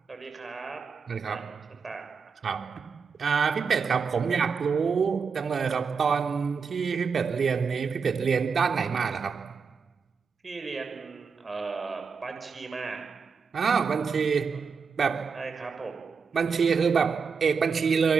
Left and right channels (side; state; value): left; quieter; 5.6 dB